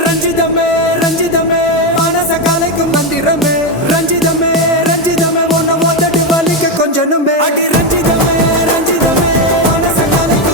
ரஞ்சிதமே ரஞ்சிதமே மனச கலைக்கும் மந்திரமே ரஞ்சிதமே ரஞ்சிதமே உன்னை மொத்தடி வலிக்க கொஞ்சனுமே அடி ரஞ்சிதமே ரஞ்சிதமே மனச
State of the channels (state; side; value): normal; both; correlation 0.09